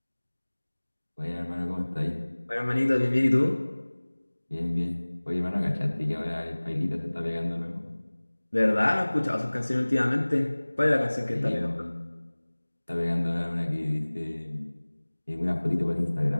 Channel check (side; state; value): both; inverted; correlation -1.00